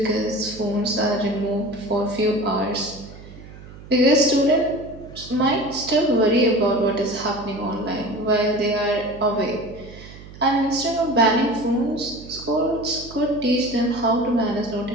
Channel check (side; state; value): right; noise; hum, 17 dB below the sound